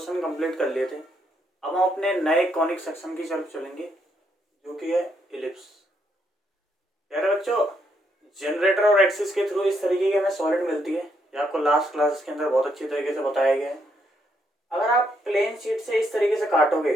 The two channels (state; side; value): normal; both; correlation 0.75